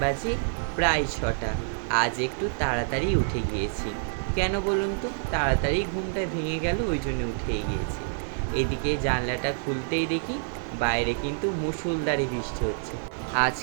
বাজে প্রায় 6টা। আজ একটু তাড়াতাড়ি উঠে গিয়েছি। কেন বলুন তো? তাড়াতাড়ি ঘুমটা ভেঙে গেল, ওই জন্য উঠে গিয়েছি। এদিকে জানলাটা খুলতেই দেখি বাইরে কিন্তু মুষলধারে বৃষ্টি হচ্ছে। আজ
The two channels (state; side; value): silent; left; digital silence